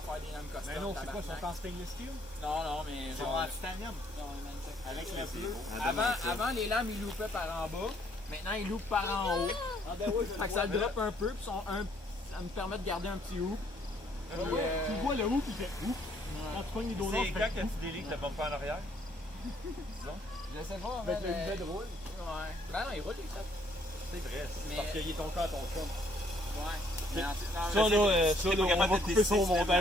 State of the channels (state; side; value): normal; both; correlation 0.66